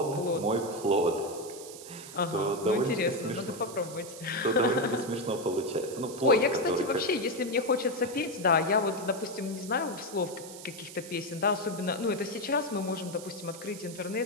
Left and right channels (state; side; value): noise; right; hiss, 14 dB below the sound